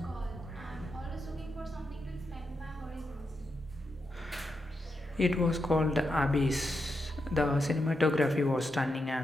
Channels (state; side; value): normal; both; correlation 0.85